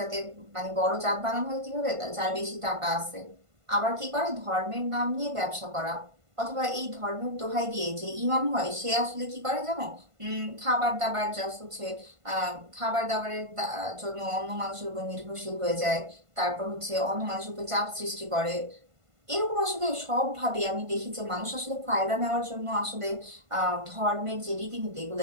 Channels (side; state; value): left; late; 1.5 ms